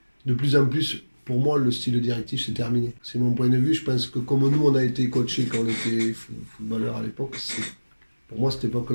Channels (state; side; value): inverted; both; correlation -1.00